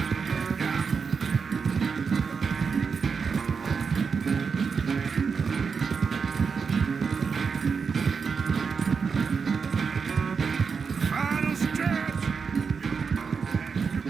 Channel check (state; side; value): quieter; left; 5.6 dB